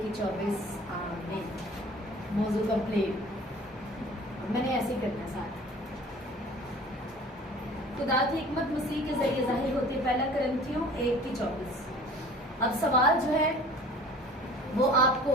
आमीन। मौजू कंप्लीट। मैंने ऐसे ही करना साथ। खुदा की हिकमत मसीह के जरिए जाहिर होती है। पहला कुरिन्थियों 1:24। अब सवाल जो है वो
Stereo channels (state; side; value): normal; both; correlation 0.46